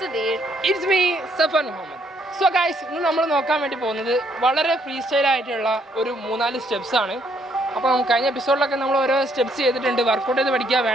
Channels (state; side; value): normal; both; correlation 0.69